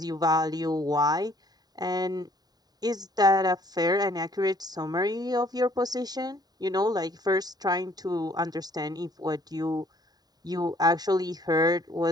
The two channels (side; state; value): left; late; 0.19 ms